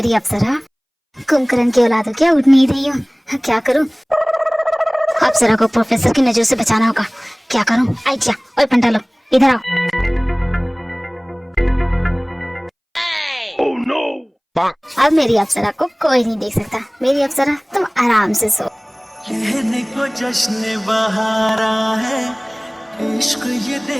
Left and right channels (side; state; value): both; identical; correlation 1.00